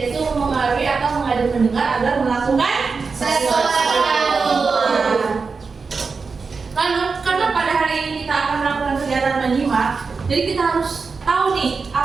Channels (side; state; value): left; quieter; 4.8 dB